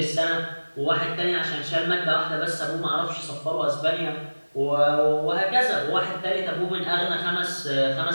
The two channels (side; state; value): both; inverted; correlation -1.00